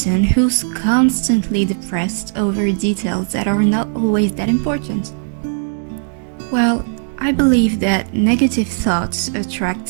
who's constantly depressed over details that are not always that important. Well, I believe that negative thoughts attract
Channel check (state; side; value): silent; left; digital silence